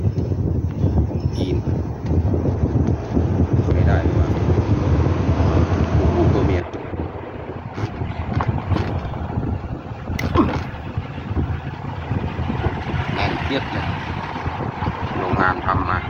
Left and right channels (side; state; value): both; identical; correlation 1.00